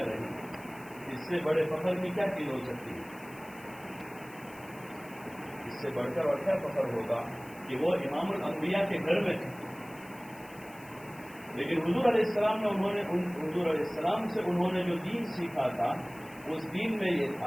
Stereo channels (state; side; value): noise; left; hiss, 22 dB below the sound